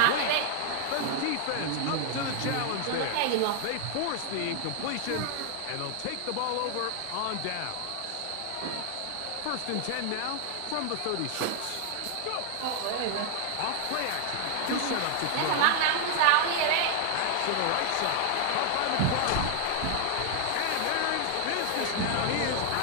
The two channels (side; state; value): both; different; correlation 0.00